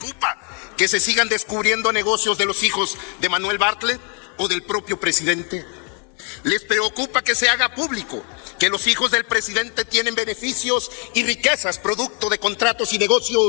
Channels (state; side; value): quieter; right; 38.1 dB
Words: que se sigan descubriendo negocios de los hijos de Manuel Bartlett o del propio presidente. Les preocupa que se haga público que los hijos del presidente tienen beneficios y riquezas producto de contratos y